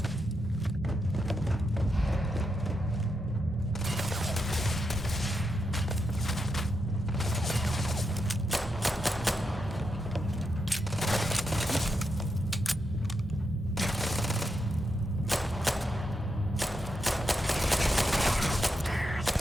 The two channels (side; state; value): both; normal; correlation 0.84